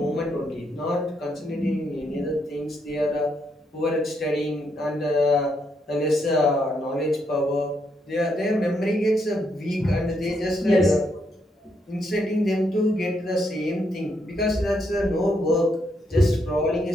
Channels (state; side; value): normal; both; correlation 0.77